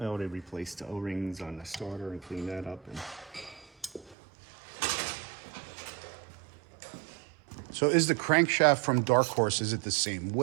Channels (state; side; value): drops out; left; at 4.2 s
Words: already replaced the O-rings on the starter and cleaned that up. And So is the crankshaft from Dark Horse, is it the same